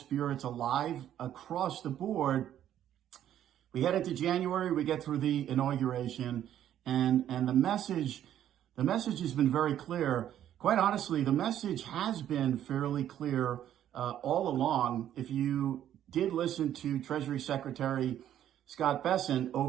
alive across the board. We head into January, we get through the inauguration, and the message has been very clear. Quite honestly, the message has been fairly clear all along. If you did listen to Treasury Secretary Scott Bessent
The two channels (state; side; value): quieter; left; 11.0 dB